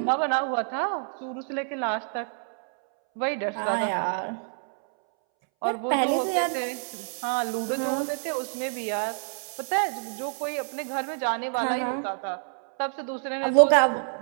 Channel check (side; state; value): left; silent; 60 dB below the other